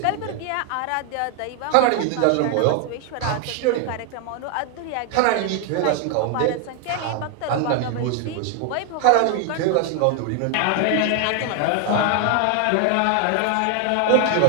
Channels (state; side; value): different; both; correlation 0.00